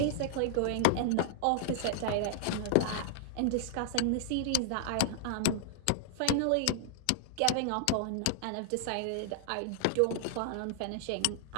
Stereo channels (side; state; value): both; different; correlation 0.00